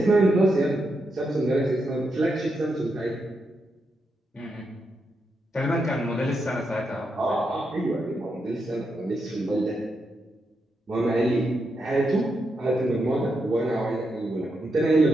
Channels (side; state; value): both; normal; correlation 0.83